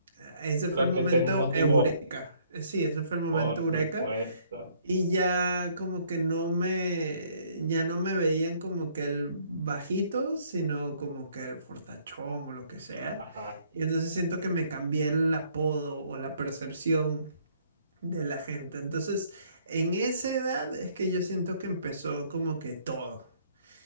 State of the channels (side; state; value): both; inverted; correlation -0.64